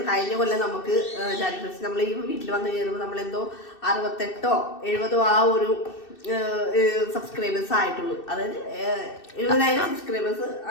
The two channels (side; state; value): right; late; 2.6 ms